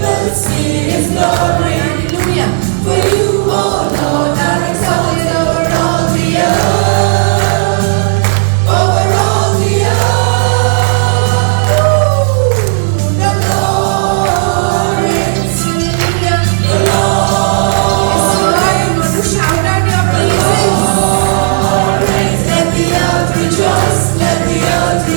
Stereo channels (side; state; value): left; silent; 74 dB below the other